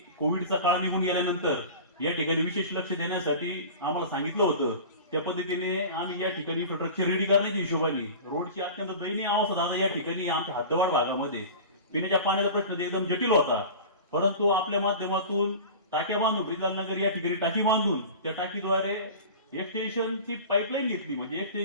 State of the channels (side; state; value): both; inverted; correlation -0.35